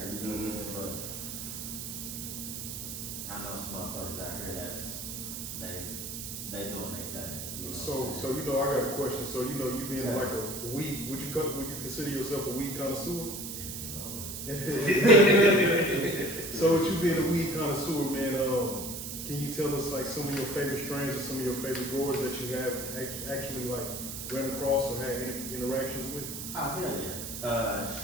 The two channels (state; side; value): noise; right; hiss, 7 dB below the sound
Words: you know what I'm saying? But I know some motherfuckers out here that's, they doing their thing. You know So, what I'm so you know, I got a question. So, you know, you being like a weed, would you consider yourself a weed connoisseur? So, with you being a weed connoisseur, man, can you tell us like some of your favorite strains or some of your favorite growers that you have actually like ran across or had interactions with? Oh, hell